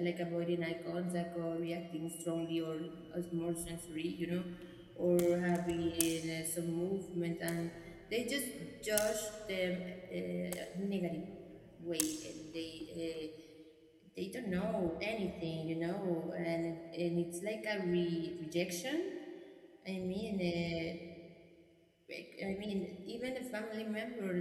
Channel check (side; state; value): both; identical; correlation 1.00